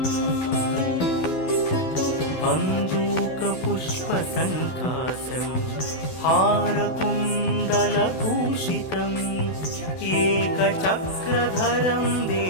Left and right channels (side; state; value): right; late; 12 ms